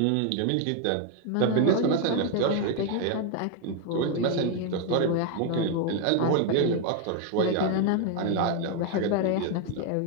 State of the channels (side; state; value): both; different; correlation 0.01